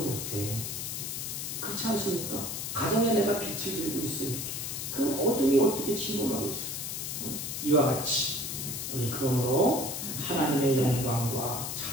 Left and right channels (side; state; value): left; noise; hiss, 4 dB below the sound